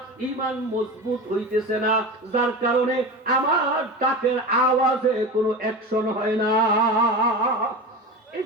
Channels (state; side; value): normal; both; correlation 0.27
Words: ঈমান মজবুত হইতেছে না, যার কারণে আমার ডাকের আওয়াজে কোনো অ্যাকশন হয় না। এই